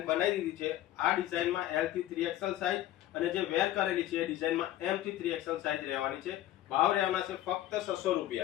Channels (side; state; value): right; quieter; 13.8 dB